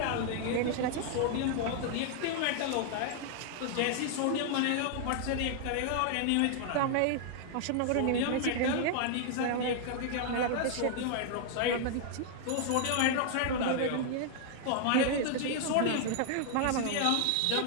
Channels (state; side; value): different; both; correlation 0.00